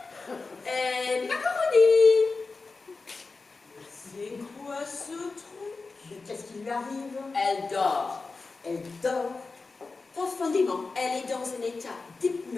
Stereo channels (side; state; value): right; quieter; 4.0 dB